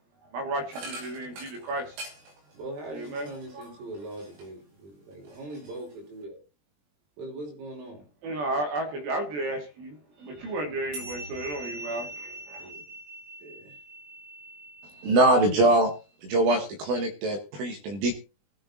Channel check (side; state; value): left; late; 20 ms